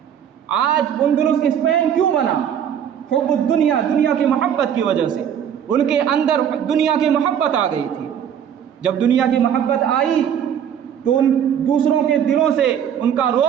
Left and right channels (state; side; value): quieter; left; 8.9 dB